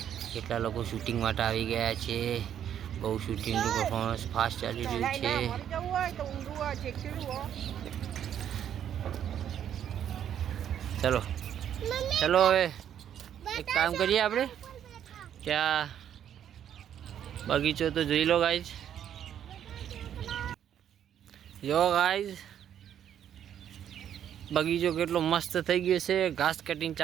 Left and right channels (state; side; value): quieter; left; 9.7 dB